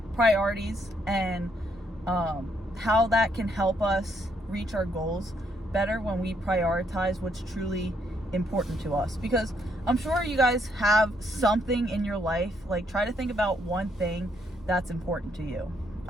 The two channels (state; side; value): normal; both; correlation 0.73